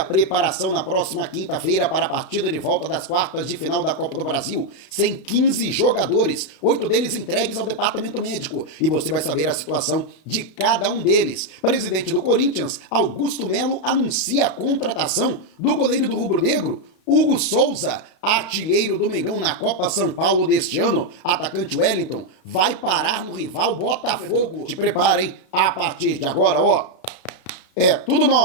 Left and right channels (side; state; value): right; late; 32 ms